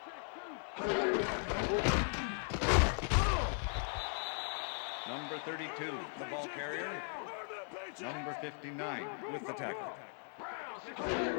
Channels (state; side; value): silent; right; 52 dB below the other